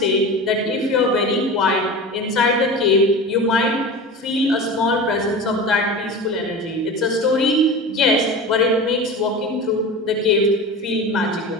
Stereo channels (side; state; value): both; normal; correlation 0.31